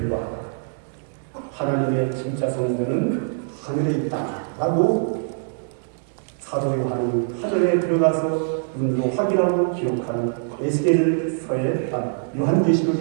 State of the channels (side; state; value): left; silent; 63 dB below the other